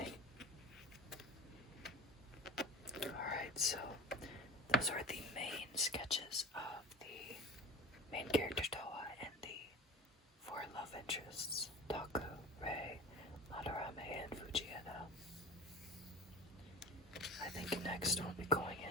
Alright, so those are the main sketches of the main character Toa and the four love interests, Taku, Rei, Madarame, and Fujieda. I think next we'll be going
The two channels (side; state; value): both; normal; correlation 0.34